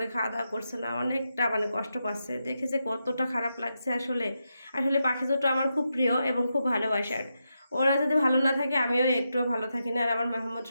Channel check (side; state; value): both; inverted; correlation -0.86